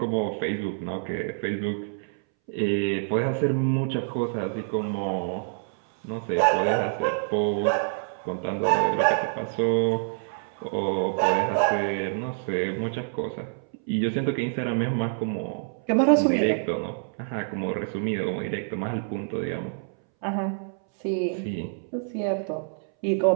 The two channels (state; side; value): silent; left; 60 dB below the other